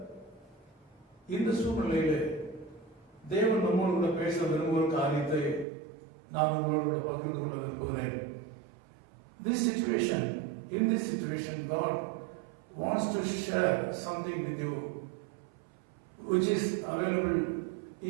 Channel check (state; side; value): drops out; left; at 5.7 s